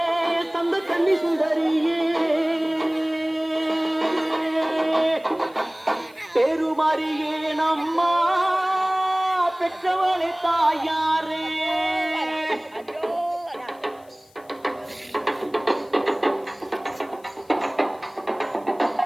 சந்த கன்னி சுந்தரியே பெருமாரியே நம்மா பெற்றவளே தாயாரே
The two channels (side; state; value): left; noise; hiss, 30 dB below the sound